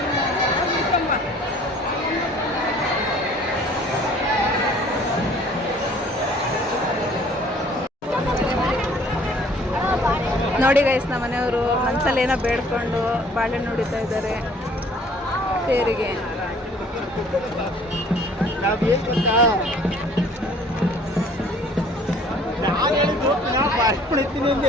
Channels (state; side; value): normal; both; correlation 0.54